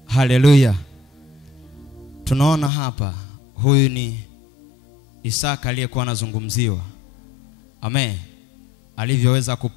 Haleluya. Tunaona hapa huyu ni Isaka aliyekuwa anazungumziwa. Amen. Alivyoweza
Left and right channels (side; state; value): right; drops out; at 2.7 s